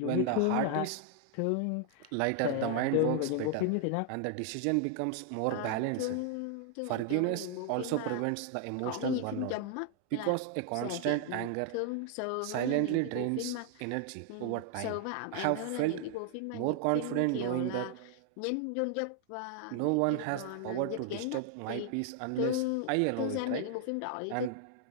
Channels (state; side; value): different; both; correlation 0.00